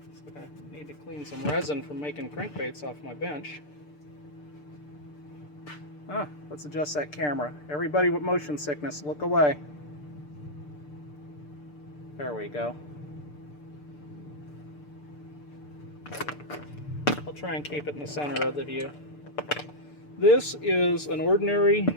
So I need to clean some resin from making crankbaits off my bench. Let's adjust that camera. Everybody with motion sickness, look away. There we go. I'll try and keep it in the center of the view. This is an ordinary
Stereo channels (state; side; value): late; right; 6.8 ms